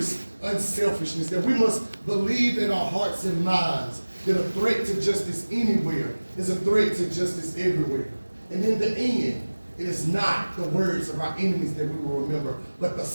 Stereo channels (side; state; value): both; inverted; correlation -1.00